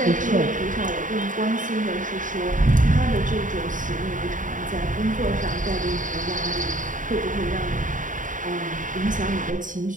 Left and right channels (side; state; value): left; late; 0.38 ms